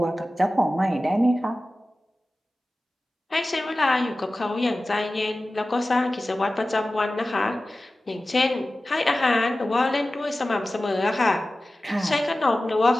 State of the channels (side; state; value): both; normal; correlation 0.96